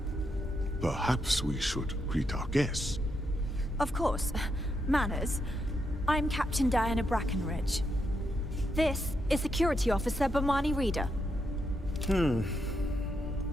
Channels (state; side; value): normal; both; correlation 0.81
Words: Perhaps we should greet our guests. Of course. Manners. I'm Captain Diana Brackenridge. This is Security Officer Bomani Reader. And